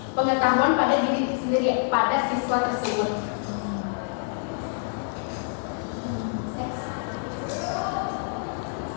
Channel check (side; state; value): right; silent; digital silence